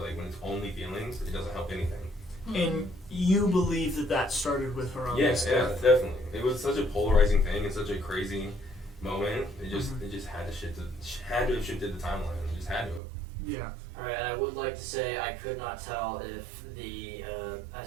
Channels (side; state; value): left; drops out; at 13.0 s